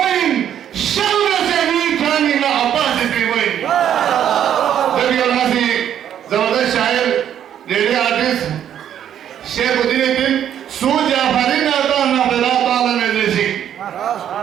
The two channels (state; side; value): quieter; left; 9.9 dB